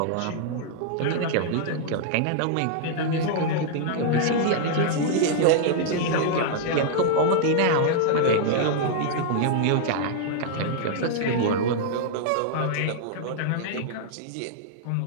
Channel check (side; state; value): both; different; correlation -0.01